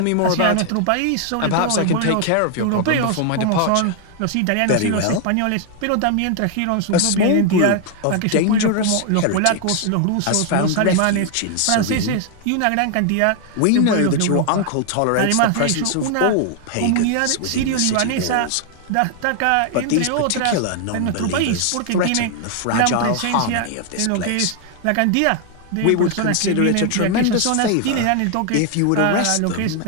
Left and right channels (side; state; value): both; different; correlation 0.00